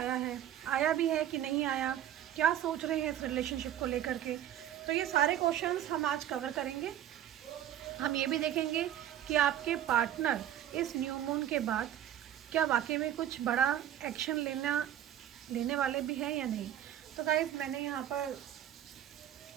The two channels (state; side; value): quieter; left; 11.1 dB